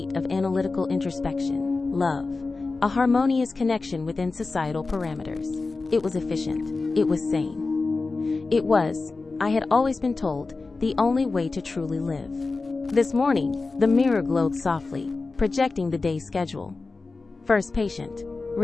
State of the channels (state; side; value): quieter; right; 3.8 dB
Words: of analytical introspection. Love, a harmonious connection within societal parameters. It was efficient. It was sane. It was, I had always been told, the only way to truly live. This morning, the mirror glowed softly, projecting the day's schedule. First patient,